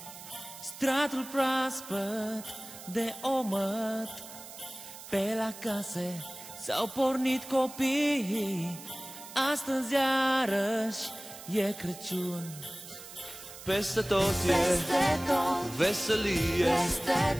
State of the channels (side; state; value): right; noise; hiss, 14 dB below the sound